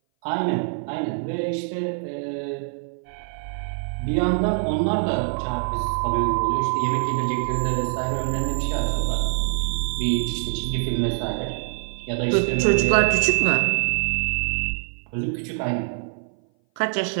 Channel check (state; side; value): silent; left; 58 dB below the other